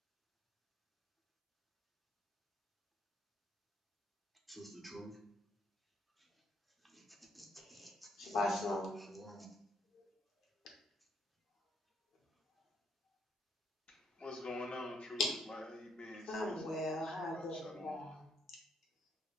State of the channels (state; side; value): normal; both; correlation 0.72